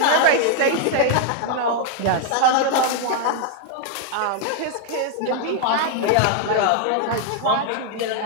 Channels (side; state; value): both; different; correlation 0.00